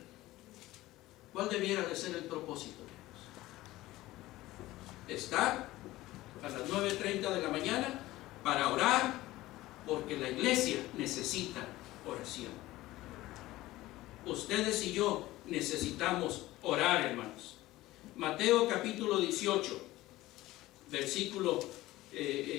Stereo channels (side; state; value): right; quieter; 17.3 dB